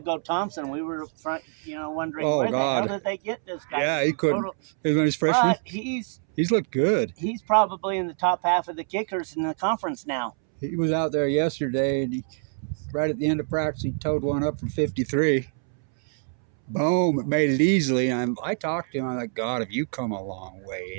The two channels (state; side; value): silent; left; 61 dB below the other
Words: Thompson, we were wondering where the hell did they get this guy? Yeah, he couldn't. It was when he's freshman. But he's looked good. He's probably in the top half of the kickers in the conference now. He was out there yesterday, and right at the end of practice, he towed one up from 53. Boom, it made it easily. And I talked to him. I'm like, God, have you come a long